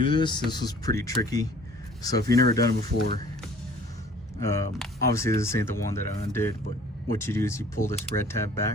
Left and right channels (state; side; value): normal; both; correlation 0.52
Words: this was pretty tricky. So if you've never done it before, obviously this ain't the one that I undid, but what you do is you pull this red tab